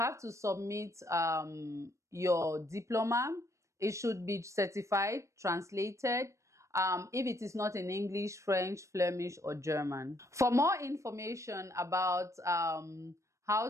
to submit your diploma. It should be certified, translated, if it is not in English, French, Flemish, or German. For more information about how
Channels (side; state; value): left; late; 0.15 ms